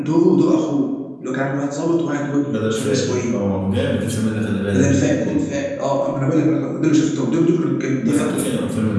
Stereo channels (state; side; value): identical; both; correlation 1.00